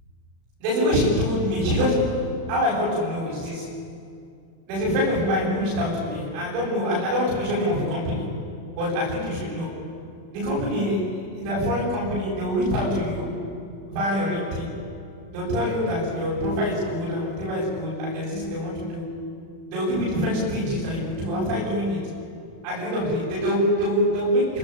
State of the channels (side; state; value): left; late; 36 ms